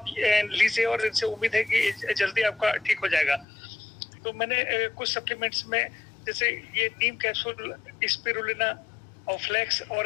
लीजिए और इनसे उम्मीद है कि जल्दी आपका ठीक हो जाएगा। तो मैंने कुछ सप्लीमेंट्स में जैसे ये नीम कैप्सूल, स्पिरुलिना और फ्लेक्स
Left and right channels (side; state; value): right; drops out; at 3.5 s